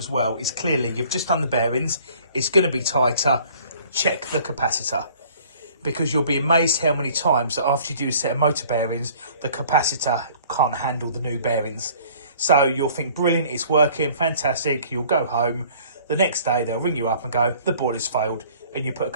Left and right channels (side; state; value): both; inverted; correlation -0.53